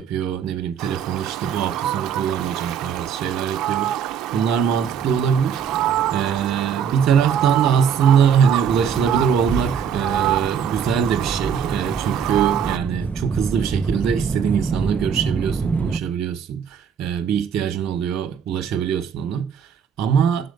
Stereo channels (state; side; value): quieter; left; 7.6 dB